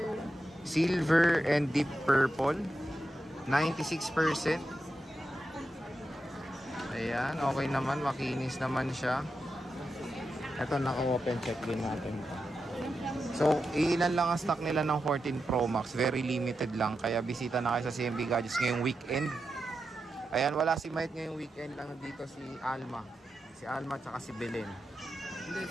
Silver and deep purple. 96%. Ayan, okay naman, makinis naman siya. Ito, naka-open check din natin. So, ilan lang ang stock nila ng 14 Pro Max. Very limited lang. Kaya bisita na kayo sa CMB Gadgets ngayong weekend. Ayan, wala si Mike ngayong weekend. Lang dito si Alma. Si Alma at saka si Belen. Hindi,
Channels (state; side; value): normal; both; correlation 0.88